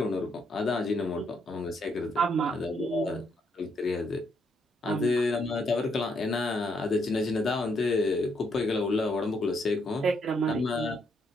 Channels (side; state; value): both; normal; correlation 0.74